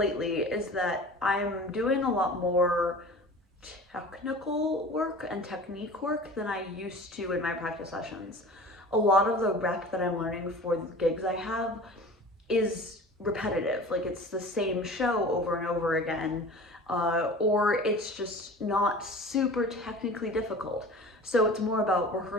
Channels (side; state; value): both; normal; correlation 0.39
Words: is that I'm doing a lot more technical work and technique work than I used to in my practice sessions. A lot of the rep that I'm learning for the gigs I have is repetitive, like it's the same show over and over again, or it's just not super technically difficult. So it's more about